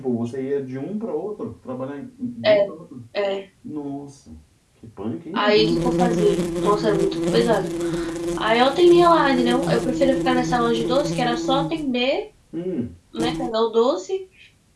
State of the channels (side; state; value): both; identical; correlation 1.00